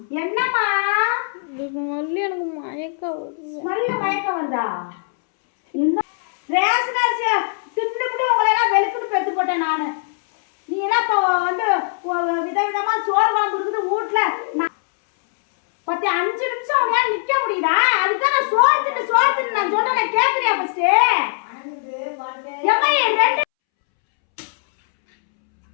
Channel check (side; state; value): right; silent; 65 dB below the other